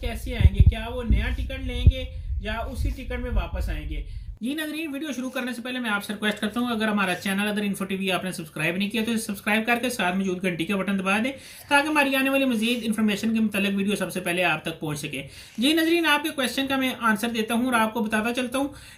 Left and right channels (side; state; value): both; identical; correlation 1.00